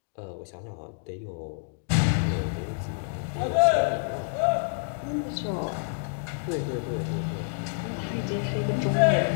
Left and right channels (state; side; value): silent; right; digital silence